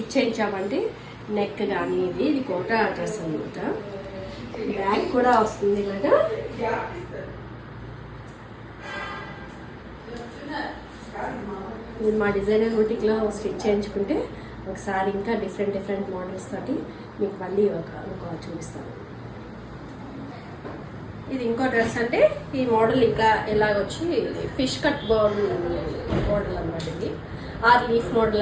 చేయించామంటే neck కానీ ఇది కోటా డ్రెస్ అనమాట. బ్యాక్ కూడా వస్తుంది ఇలాగా. ఇది మా డిజైనర్ బుటీక్లో స్టిచ్ చేయించుకుంటే ఒకసారి ఇంకా డిఫరెంట్ మోడల్స్ తోటి మీకు మళ్ళీ ఇంకో చూపిస్తాను. ఇది ఇంకో డ్రెస్ అంటే ఈ మోడల్ ఇంకా ఎలాగొచ్చి ఫిష్ కట్ మోడల్ అనమాట. ఇది ఆర్ లీఫ్ మోడల్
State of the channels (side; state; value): both; identical; correlation 1.00